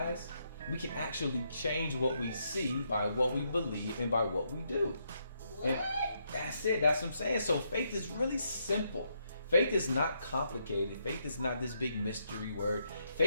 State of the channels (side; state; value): both; inverted; correlation -0.78